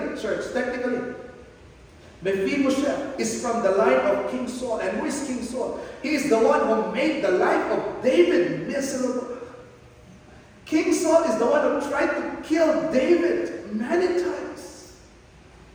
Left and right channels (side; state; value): both; identical; correlation 1.00